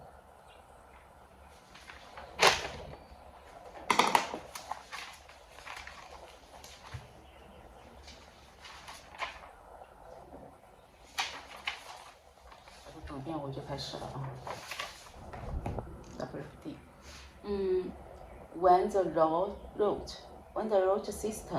读遍我就开始了啊。WFD。When the root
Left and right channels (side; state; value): both; identical; correlation 1.00